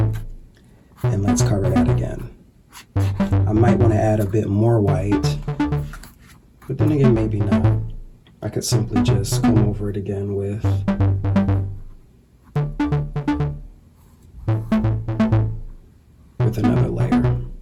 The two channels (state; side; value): identical; both; correlation 1.00